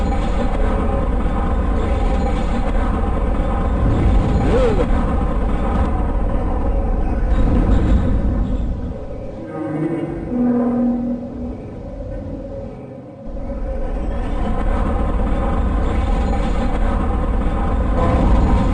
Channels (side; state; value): both; identical; correlation 1.00